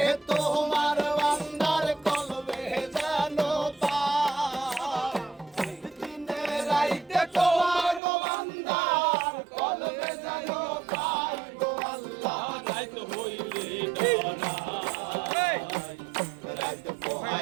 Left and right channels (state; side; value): drops out; left; at 8.0 s